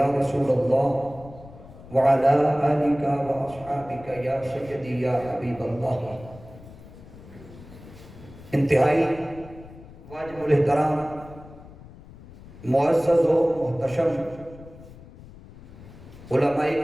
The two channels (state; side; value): noise; left; rumble, 19 dB below the sound